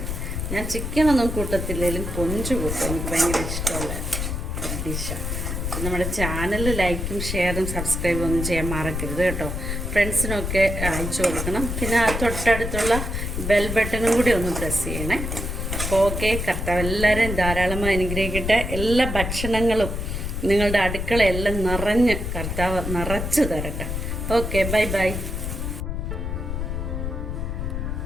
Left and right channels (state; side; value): noise; left; rumble, 3 dB below the sound